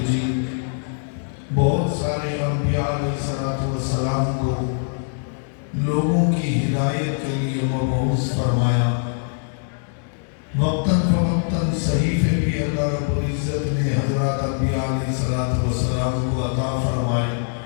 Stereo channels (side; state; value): right; silent; digital silence